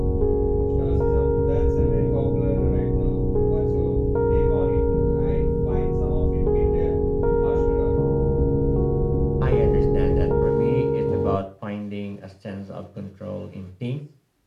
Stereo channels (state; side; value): identical; both; correlation 1.00